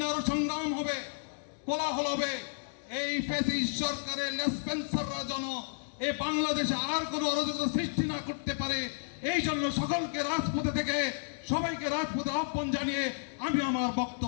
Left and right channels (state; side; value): silent; right; digital silence